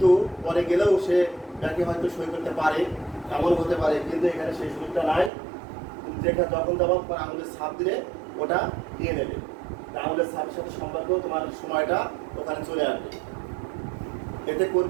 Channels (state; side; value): drops out; left; at 5.3 s